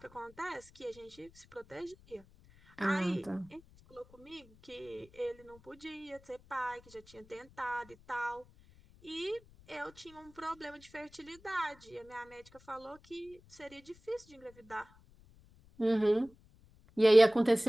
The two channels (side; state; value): left; noise; rumble, 25 dB below the sound